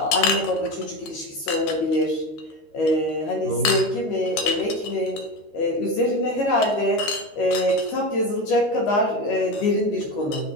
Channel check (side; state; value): right; late; 13 ms